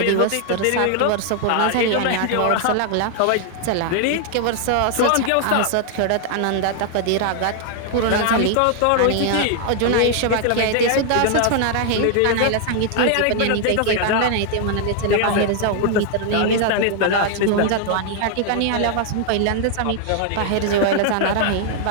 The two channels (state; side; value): different; both; correlation 0.00